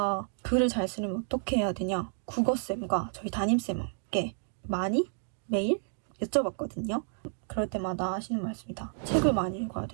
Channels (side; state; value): left; silent; digital silence